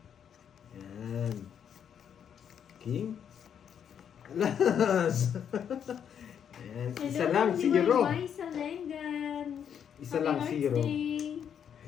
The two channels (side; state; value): right; quieter; 8.4 dB